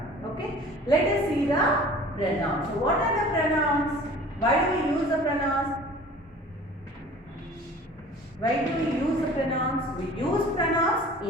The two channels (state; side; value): normal; both; correlation 0.45